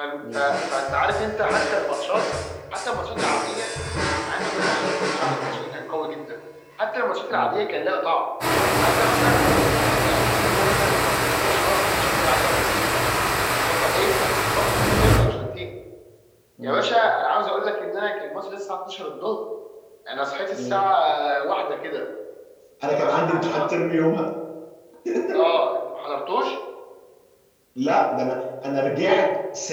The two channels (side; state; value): both; identical; correlation 1.00